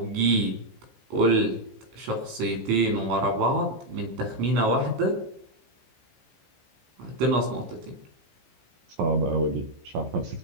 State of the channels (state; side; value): late; left; 15 ms